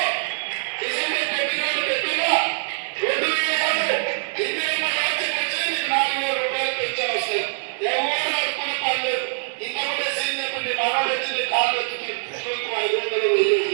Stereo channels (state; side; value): silent; left; digital silence